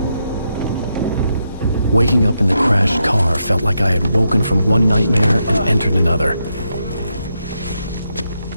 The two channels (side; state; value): both; inverted; correlation -0.83